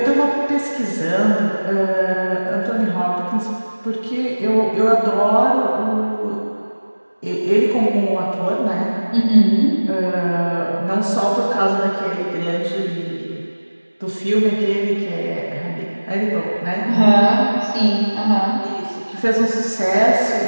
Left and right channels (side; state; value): both; inverted; correlation -1.00